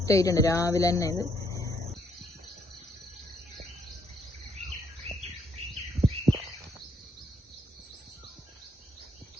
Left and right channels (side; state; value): both; normal; correlation 0.72